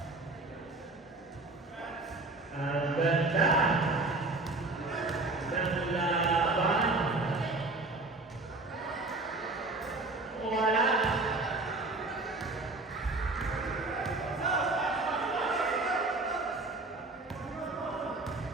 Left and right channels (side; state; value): left; quieter; 3.3 dB